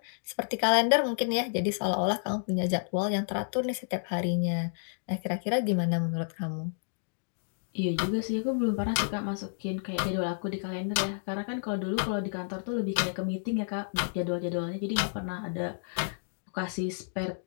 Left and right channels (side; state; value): right; silent; digital silence